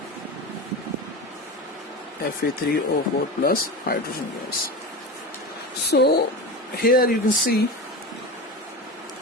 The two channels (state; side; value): normal; both; correlation 0.25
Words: Fe3O4 plus hydrogen gas. So here you can see